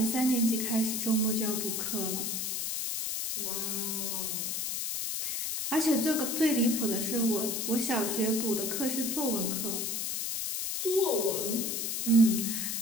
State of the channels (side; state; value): left; noise; hiss, 1 dB below the sound